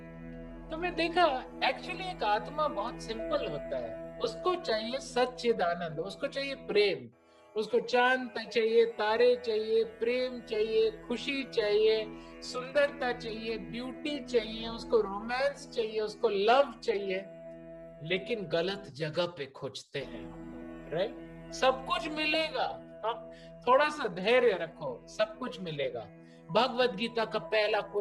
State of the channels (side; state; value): both; identical; correlation 1.00